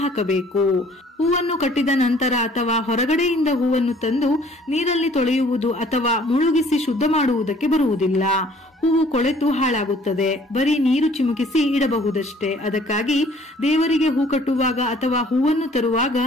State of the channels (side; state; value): both; normal; correlation 0.56